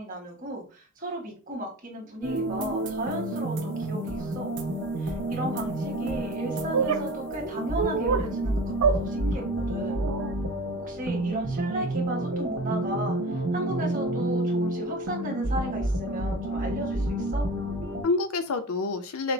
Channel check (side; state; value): both; normal; correlation 0.33